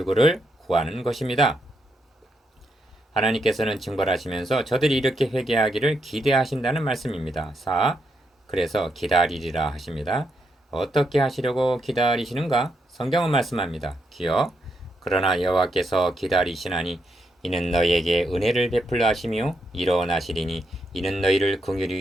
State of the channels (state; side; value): normal; both; correlation 0.80